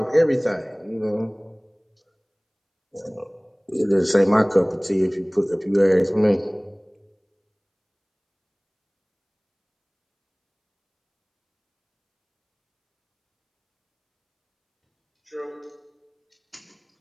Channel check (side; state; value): both; identical; correlation 1.00